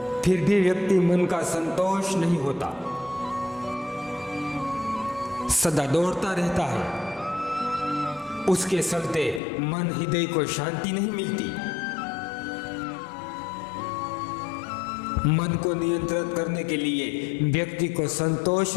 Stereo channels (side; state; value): right; drops out; at 9.4 s